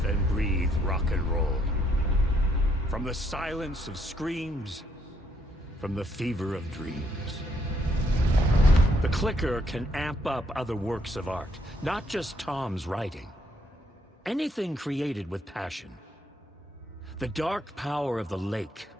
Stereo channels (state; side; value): normal; both; correlation 0.72